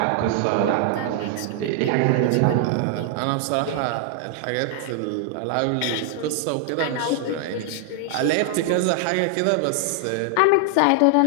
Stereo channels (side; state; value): both; different; correlation 0.00